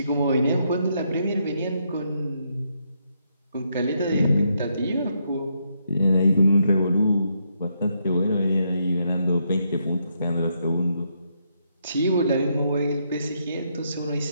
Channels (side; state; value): both; inverted; correlation -0.77